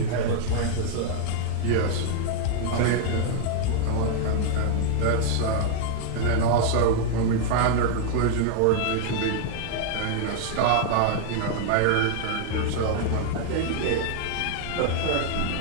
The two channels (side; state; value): both; different; correlation 0.00